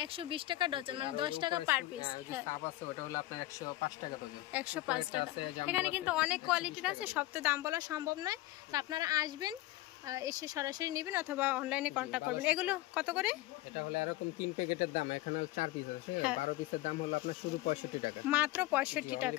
120 টাকা ডজন, মানে 10 টাকা পার পিস। হ্যাঁ, সাব আছে, ওটা হলো আপনার 105 টাকা ডজন। 105 টাকা। এখানে কিন্তু অনেক কোয়ালিটির আছে, সব তো দাম বলা সম্ভব নয়। তো আপনারা আসবেন, এসে সরাসরি নেবেন অথবা অনলাইনে কন্ট্যাক্ট করবেন। এগুলো কত করে? এটা হলো এরকম 3 প্যাকেটের দাম, এখানে 4 পিস আছে, 12 পিসের দাম হলো আপনার শুধু 65 টাকা, মাত্র 65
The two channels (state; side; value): quieter; right; 17.3 dB